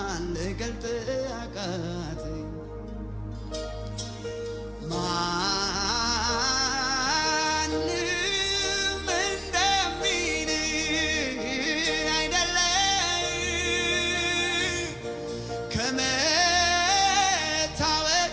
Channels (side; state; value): both; identical; correlation 1.00